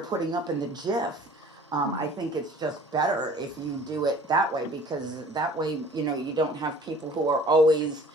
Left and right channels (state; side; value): normal; both; correlation 0.49